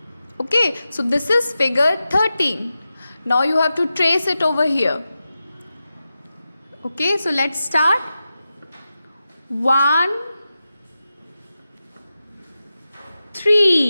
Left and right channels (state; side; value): inverted; both; correlation -0.92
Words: Okay, so this is figure 13. Now you have to trace it over here. Okay, so let's start. 1,